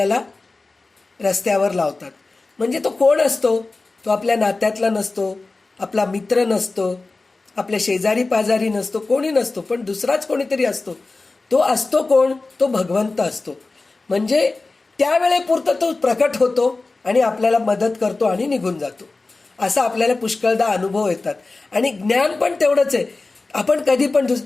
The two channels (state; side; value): quieter; right; 3.5 dB